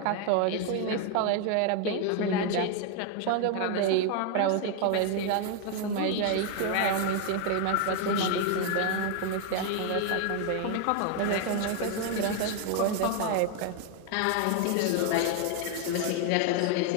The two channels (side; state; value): both; different; correlation 0.01